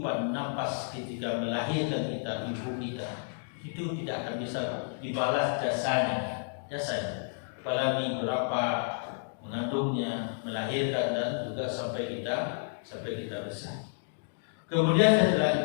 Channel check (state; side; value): silent; right; digital silence